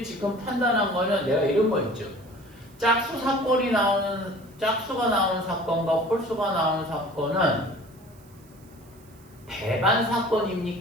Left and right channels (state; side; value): noise; right; hiss, 28 dB below the sound